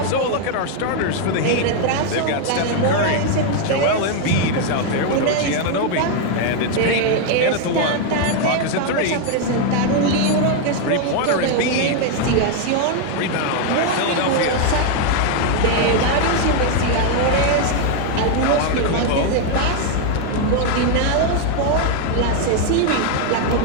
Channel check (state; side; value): different; both; correlation 0.01